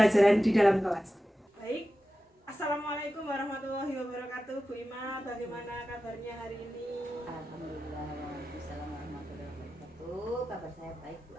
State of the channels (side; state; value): both; normal; correlation 0.93